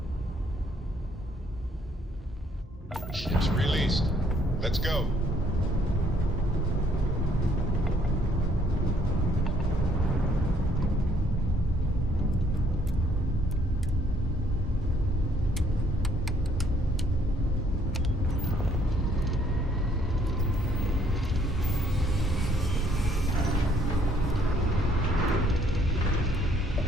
Ship's released. Let's go.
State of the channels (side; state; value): both; normal; correlation 0.65